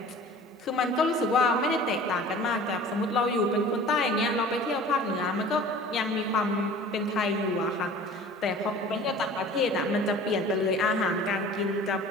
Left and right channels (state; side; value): normal; both; correlation 0.44